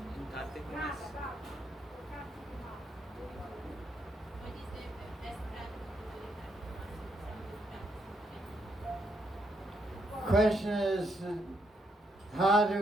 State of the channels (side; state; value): both; normal; correlation 0.77